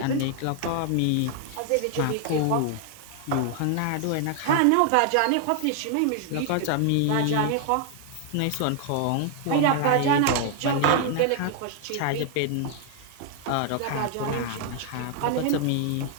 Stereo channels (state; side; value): different; both; correlation 0.00